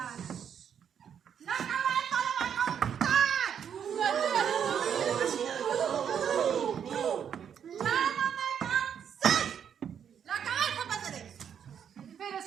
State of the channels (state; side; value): quieter; left; 8.2 dB